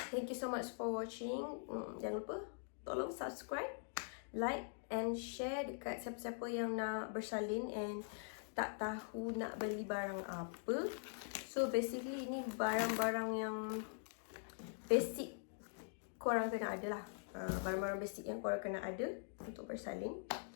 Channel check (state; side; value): silent; right; digital silence